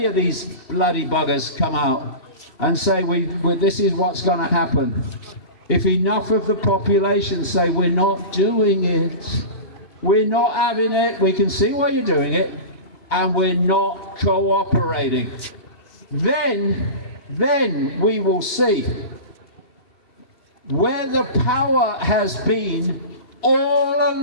of these bloody buggers come out and say this is what's going to happen, if enough of the population say we're not doing it, we're not having it, we can see why you're doing it, and we're not cooperating. Then we will see where the power has been all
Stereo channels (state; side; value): late; right; 2.7 ms